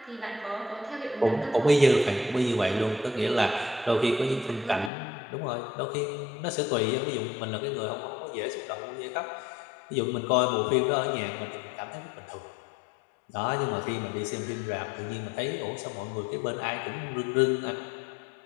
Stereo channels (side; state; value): right; drops out; at 4.9 s